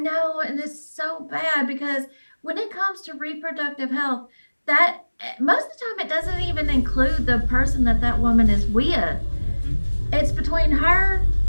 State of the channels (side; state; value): both; inverted; correlation -1.00